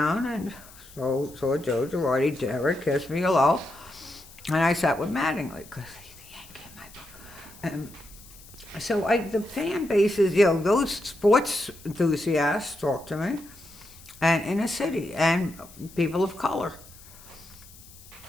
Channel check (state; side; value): noise; left; hiss, 21 dB below the sound